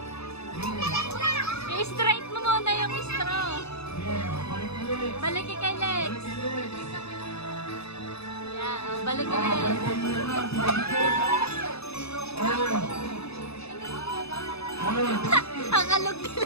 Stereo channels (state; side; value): late; right; 0.79 ms